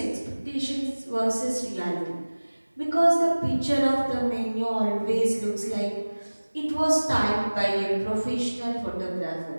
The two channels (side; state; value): both; inverted; correlation -1.00